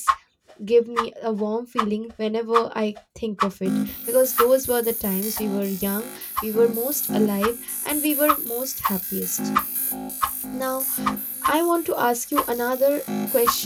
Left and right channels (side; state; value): both; identical; correlation 1.00